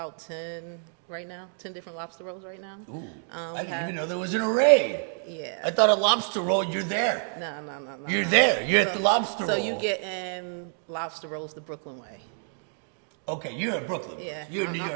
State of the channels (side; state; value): left; silent; 56 dB below the other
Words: 10 right now, 10 different lobster rolls right now. Ooh, I didn't even know there was an array. Yeah. I thought a lobster roll, you're there. No. You're there. You're at the lobster roll. So you get in lobster rolls the Brooklyn way. Okay, you're in Brooklyn. Yeah. You're in New